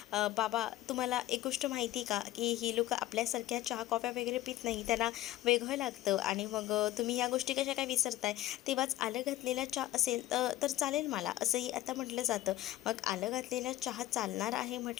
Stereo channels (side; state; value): right; quieter; 15.5 dB